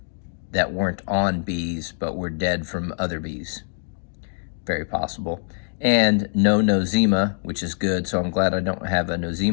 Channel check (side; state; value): right; silent; 63 dB below the other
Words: that weren't on bees but were dead from other bees. Very possible. And no nosema, which is good, so I'm glad I don't have a